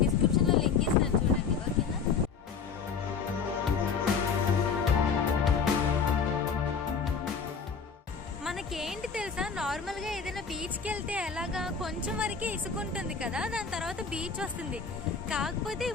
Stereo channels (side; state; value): right; quieter; 5.8 dB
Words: డిస్క్రిప్షన్లో లింక్ ఇస్తాను, చూడండి, ఓకేనా? మనకేంటి తెలుసా, నార్మల్గా ఏదైనా బీచ్కి వెళ్తే ఎలాగా కొంచెం వరకే ఇసుకుంటుంది కదా, దాని తర్వాత బీచ్ వస్తుంది. కాకపోతే ఈ